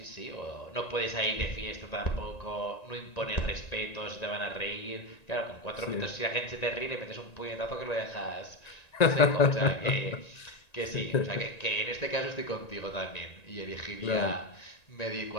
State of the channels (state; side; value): late; right; 1.9 ms